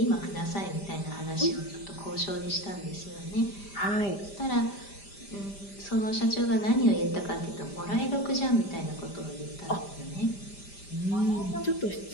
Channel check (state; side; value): late; right; 5.0 ms